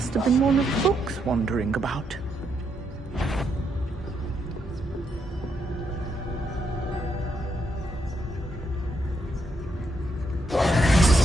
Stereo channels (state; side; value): normal; both; correlation 0.78